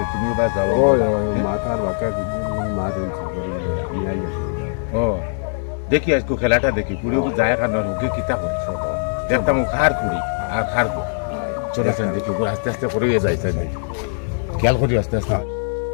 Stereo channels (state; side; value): silent; right; digital silence